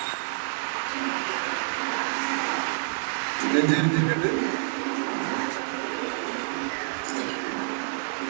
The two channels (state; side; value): silent; left; 55 dB below the other